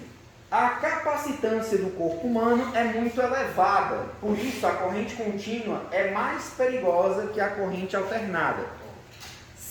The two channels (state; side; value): identical; both; correlation 1.00